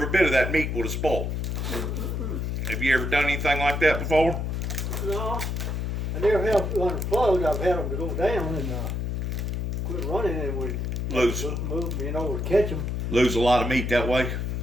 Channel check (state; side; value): noise; left; hum, 1 dB below the sound